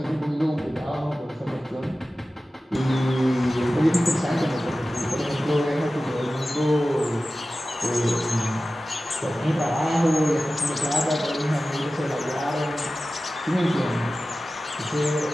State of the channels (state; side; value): normal; both; correlation 0.95